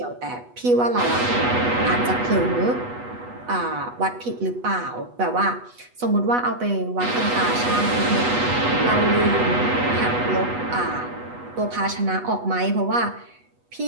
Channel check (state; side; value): late; left; 8.2 ms